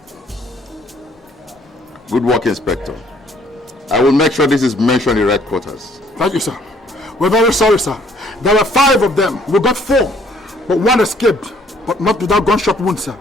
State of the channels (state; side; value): normal; both; correlation 0.62